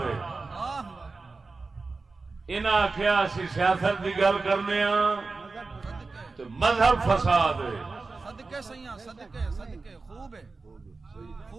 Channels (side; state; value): left; quieter; 3.9 dB